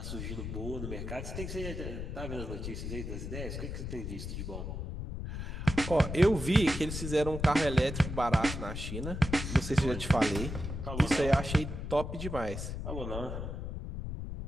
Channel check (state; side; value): noise; left; rumble, 5 dB below the sound